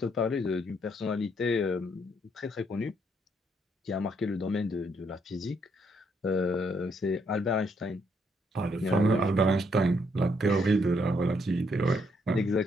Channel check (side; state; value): both; normal; correlation 0.73